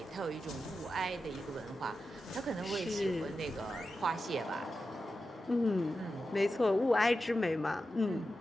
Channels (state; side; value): normal; both; correlation 0.91